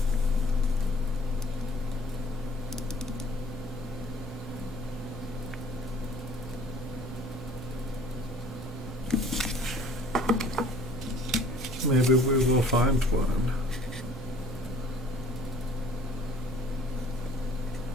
Maybe we will find one.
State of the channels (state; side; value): normal; both; correlation 0.53